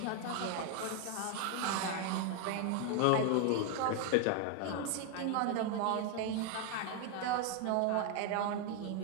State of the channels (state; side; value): different; both; correlation 0.01